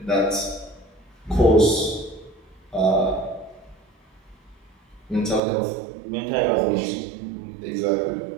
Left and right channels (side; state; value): left; drops out; at 5.4 s